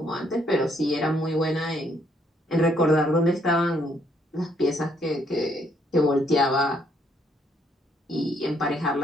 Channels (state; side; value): normal; both; correlation 0.70